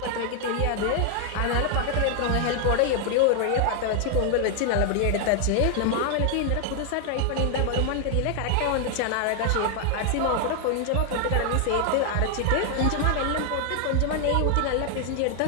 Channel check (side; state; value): both; different; correlation 0.00